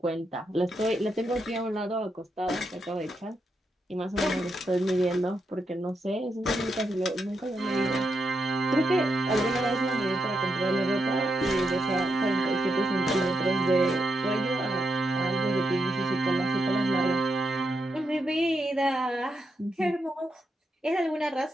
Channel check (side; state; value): both; normal; correlation 0.83